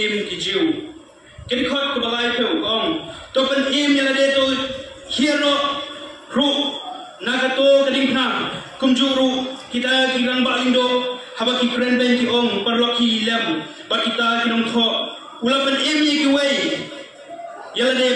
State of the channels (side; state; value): both; identical; correlation 1.00